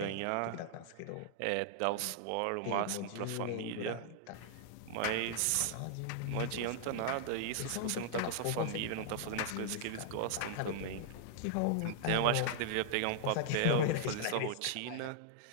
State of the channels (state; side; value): different; both; correlation -0.01